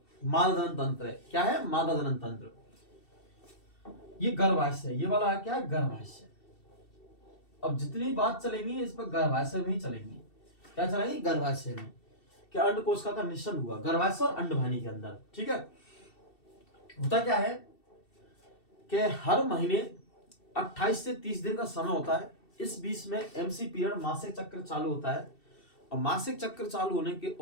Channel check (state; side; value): late; right; 2.7 ms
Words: मादा जनन तंत्र है। क्या है? मादा जनन तंत्र। ये गर्भाशय, ये वाला क्या है? गर्भाशय। अब जितनी बात चलेंगी इस पर गर्भाशय में ही चलेंगी। क्या चलेंगी? गर्भाशय में। क्या अंडकोशिका का निश्चल हुआ गर्भाशय और अंडवाहिनी के अंदर, ठीक है। होता क्या है कि हर महीने 28 से 30 दिन का समय होता है। इस बीच में एमसी पीरियड, मासिक चक्र चालू होता है। और मासिक चक्र चालू होने के